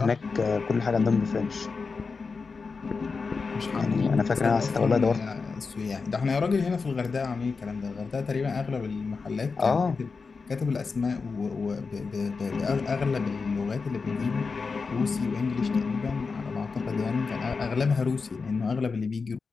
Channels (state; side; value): quieter; right; 4.7 dB